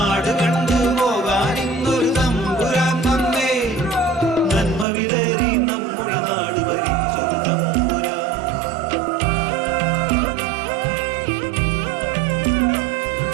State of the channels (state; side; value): drops out; left; at 4.9 s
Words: കണ്ടു പോകാൻ ഇന്നൊരു തമ്പുരാൻ വന്നേ. നന്മ വിതറി നമ്മുടെ നാട് ഭരിച്ചൊരു തമ്പുരാൻ.